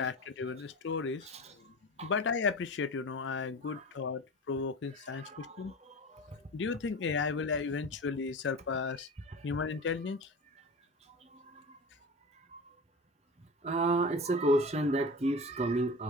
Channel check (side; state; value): both; normal; correlation 0.32